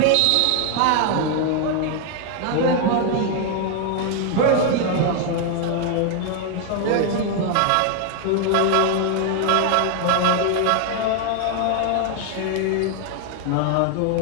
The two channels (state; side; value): different; both; correlation 0.00